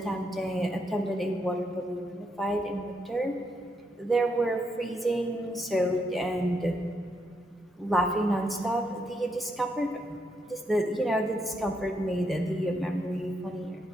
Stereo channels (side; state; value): both; normal; correlation 0.78